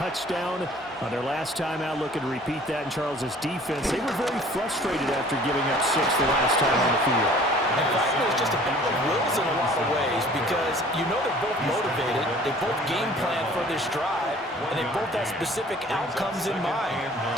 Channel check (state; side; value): normal; both; correlation 0.51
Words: on their last time out. Looking to repeat that in Charles's defense. They were very frustrated after giving up 6 the last time on the field. And frankly, it's just a battle of wills in a lot of ways, because you know they're both motivated. They both game plan for this drive, and they both have specific outcomes in mind.